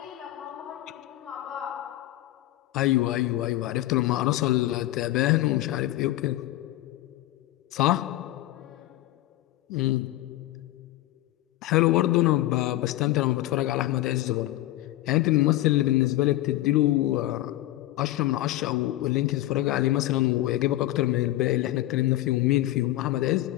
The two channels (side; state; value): right; quieter; 15.8 dB